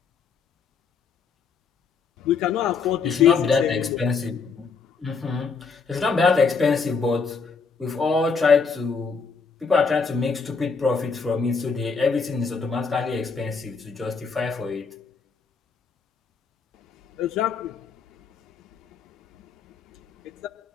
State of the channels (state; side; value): quieter; right; 5.2 dB